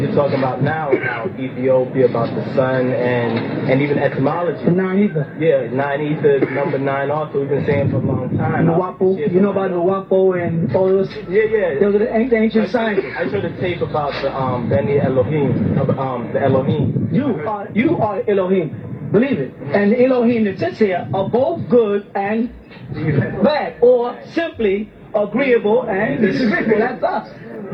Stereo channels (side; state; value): both; identical; correlation 1.00